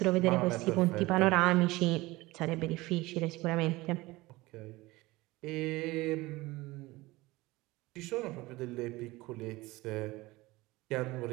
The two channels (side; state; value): left; quieter; 20.4 dB